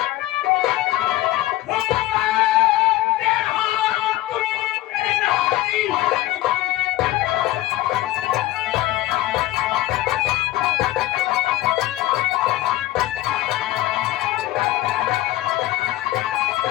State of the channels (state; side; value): quieter; right; 16.1 dB